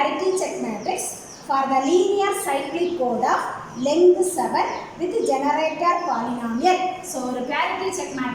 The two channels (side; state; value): both; identical; correlation 1.00